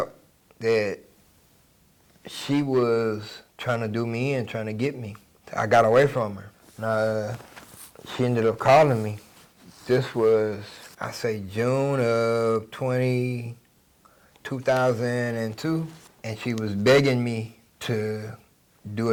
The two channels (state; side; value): identical; both; correlation 1.00